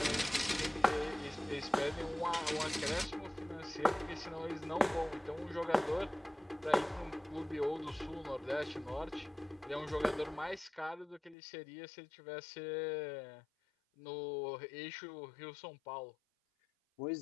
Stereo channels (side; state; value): right; drops out; at 11.4 s